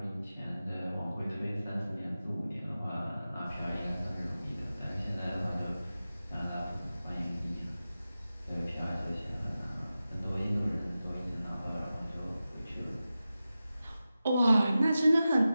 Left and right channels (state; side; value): inverted; both; correlation -0.94